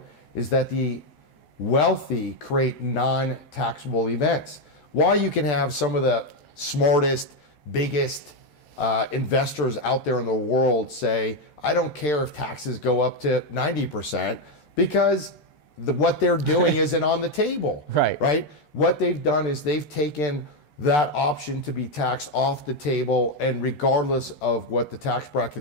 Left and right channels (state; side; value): late; right; 14 ms